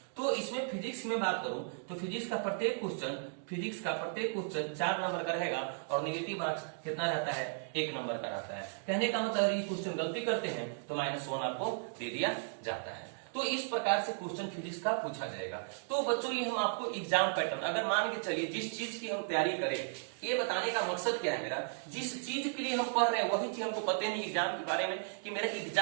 तो इसमें फिजिक्स में बात करूं तो फिजिक्स का प्रत्येक क्वेश्चन 4 नंबर का रहेगा और नेगेटिव मार्क्स कितना रहता है 1 नंबर का रहता है। कहने का मतलब अगर ये क्वेश्चन गलती करते हैं तो -1 आपको दे दिया जाता है। तो इस प्रकार से क्वेश्चन फिजिक्स का पूछा जाएगा। तो बच्चों ये हम आपको एग्जाम पैटर्न, अगर मान के चलिए जिस चीज की हम तैयारी करें, ये बताने का मकसद क्या है मेरा, जिस चीज के लिए हम पढ़ रहे हैं वही चीज हमको पता नहीं एग्जाम के बारे में कि मेरा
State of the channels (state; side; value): silent; left; digital silence